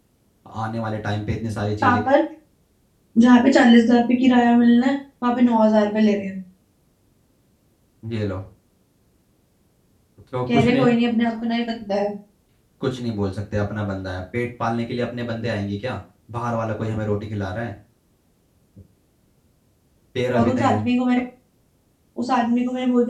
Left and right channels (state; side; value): identical; both; correlation 1.00